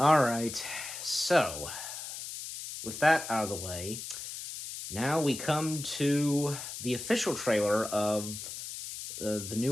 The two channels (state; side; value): noise; left; hiss, 8 dB below the sound